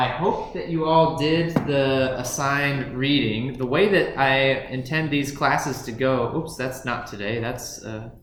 hope that you all did the assigned reading. The way that I intend these classes to go, oops, that's not today. That's a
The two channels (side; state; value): both; identical; correlation 1.00